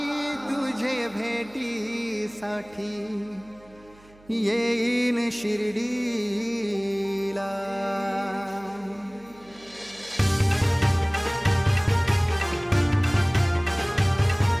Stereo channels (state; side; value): noise; right; hum, 26 dB below the sound